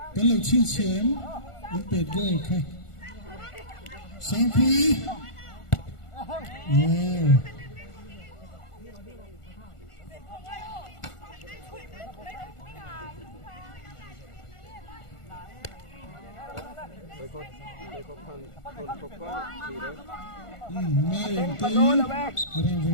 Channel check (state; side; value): late; right; 1.4 ms